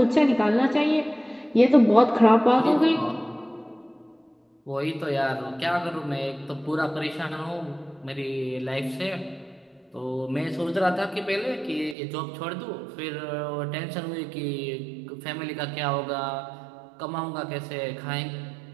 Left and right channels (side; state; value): left; drops out; at 12.0 s